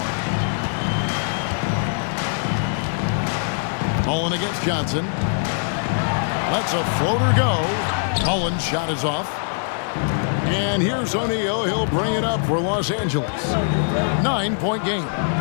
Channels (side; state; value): right; silent; digital silence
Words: Mullen against Johnson. Lets a floater go. Mullen's shot is off. And here's O'Neal. He'll bring it up for Los Angeles. 9-point game.